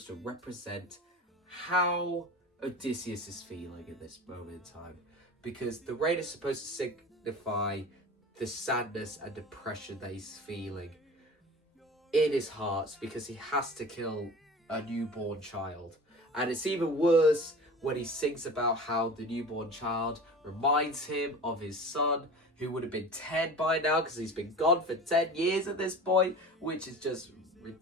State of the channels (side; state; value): both; normal; correlation 0.36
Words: to represent how Odysseus is feeling in this moment in time. Because the rain is supposed to signify the sadness and depression that he's feeling in his heart because he has to kill a newborn child. And it's even worse when he sings about how the newborn child reminds him of his son, who would have been 10 by now because he's been gone for 10 years at this point, which is just